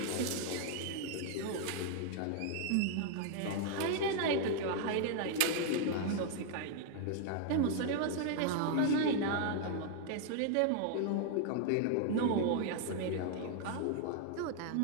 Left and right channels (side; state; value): both; different; correlation 0.00